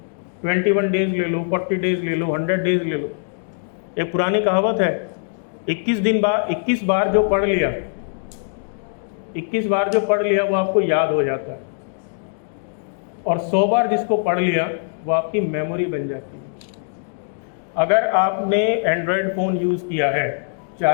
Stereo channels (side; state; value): right; silent; digital silence